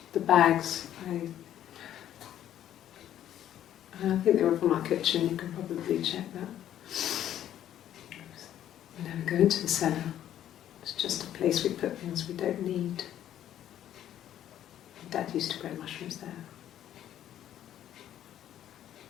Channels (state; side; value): quieter; right; 11.3 dB